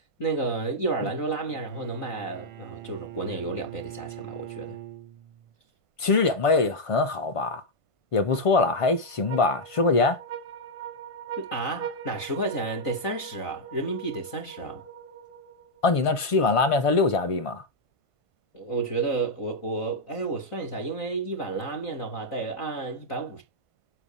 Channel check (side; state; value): right; late; 1.5 ms